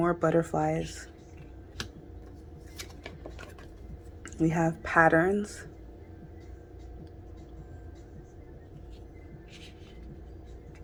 butterflies. We have patterns.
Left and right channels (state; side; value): identical; both; correlation 1.00